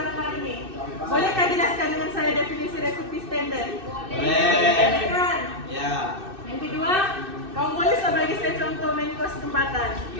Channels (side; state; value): left; late; 2.6 ms